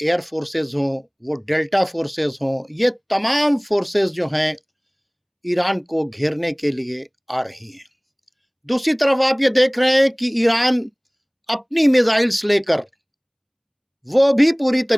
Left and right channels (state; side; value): identical; both; correlation 1.00